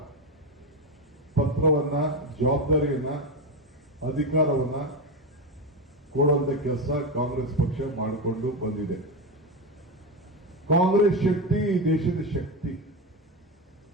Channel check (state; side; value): normal; both; correlation 0.14